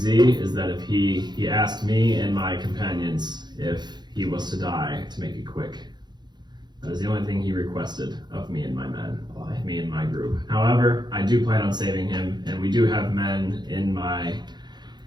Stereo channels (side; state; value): left; late; 0.21 ms